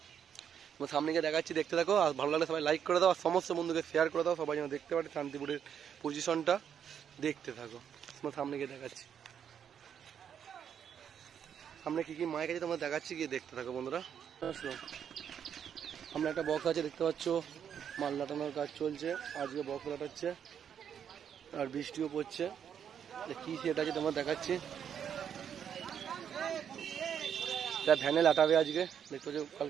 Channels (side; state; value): left; quieter; 8.4 dB